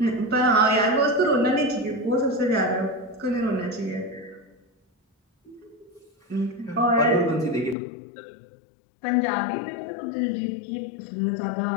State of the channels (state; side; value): drops out; right; at 7.8 s